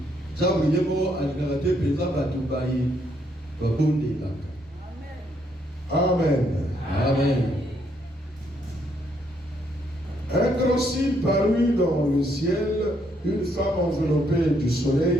Amen. Amen. Un grand signe parut dans le ciel, une femme enveloppée du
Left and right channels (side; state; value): both; normal; correlation 0.72